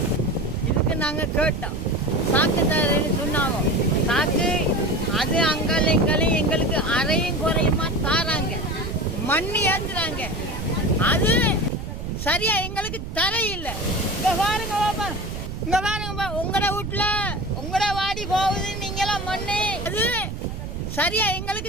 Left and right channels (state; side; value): noise; right; rumble, 7 dB below the sound